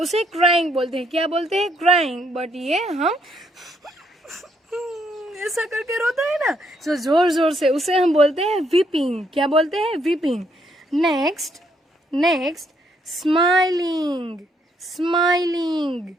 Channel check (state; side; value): normal; both; correlation 0.72